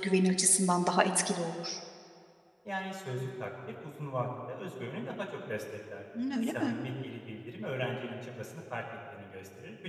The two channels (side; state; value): both; identical; correlation 1.00